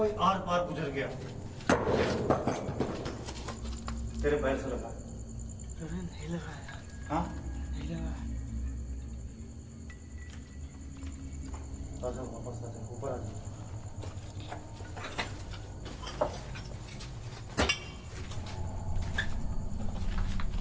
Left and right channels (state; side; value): identical; both; correlation 1.00